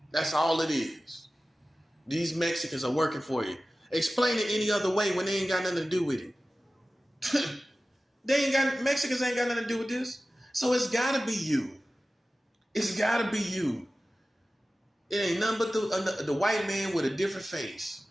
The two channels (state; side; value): normal; both; correlation 0.96